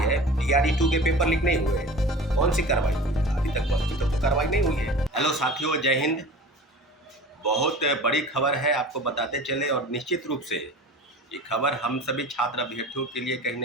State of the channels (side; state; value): both; normal; correlation 0.38